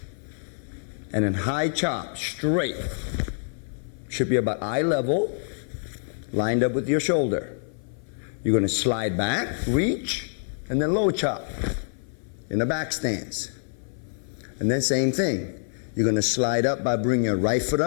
and then high chop straight. Should be about eye level, lined up with your shoulder. You're going to slide back, reach, and then low chop in the back stance. And then same thing. You're going to slide up by bringing your right foot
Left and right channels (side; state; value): right; silent; 56 dB below the other